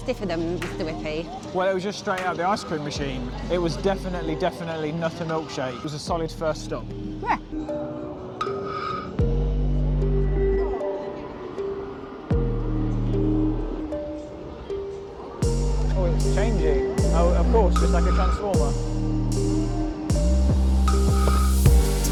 than Mr. Whippy. Well, it was just straight out of the ice cream machine. It was definitely not a milkshake. It was a solid first stop. Yeah. Oh, it's changing. Oh, of course, just like a transformer.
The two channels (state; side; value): identical; both; correlation 1.00